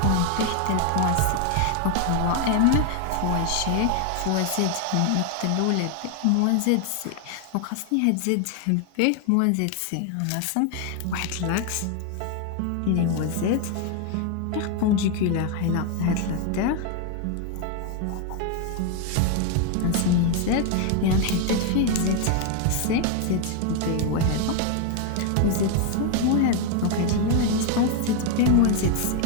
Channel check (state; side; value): different; both; correlation 0.01